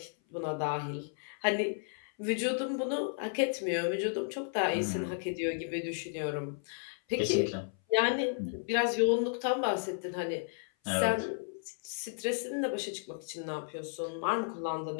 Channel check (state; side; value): silent; right; 55 dB below the other